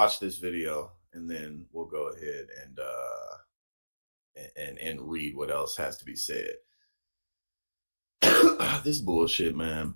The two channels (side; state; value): both; inverted; correlation -1.00